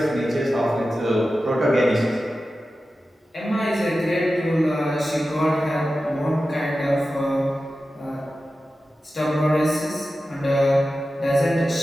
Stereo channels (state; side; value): normal; both; correlation 0.93